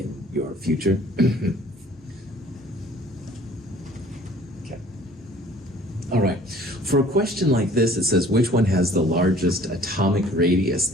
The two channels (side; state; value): both; normal; correlation 0.53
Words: your future. Okay. All right. For a question like this, it says, which one has the largest atomic radius?